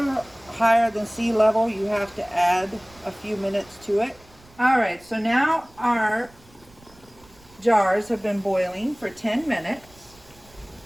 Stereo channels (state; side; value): noise; right; rumble, 27 dB below the sound